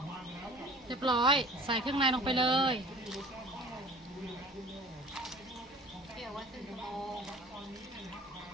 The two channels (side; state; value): both; normal; correlation 0.45